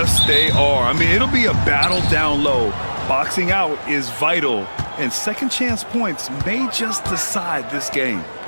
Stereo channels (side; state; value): both; inverted; correlation -1.00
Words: they are. I mean, it'll be a battle down low. Boxing out is vital, and second chance points may just decide this game.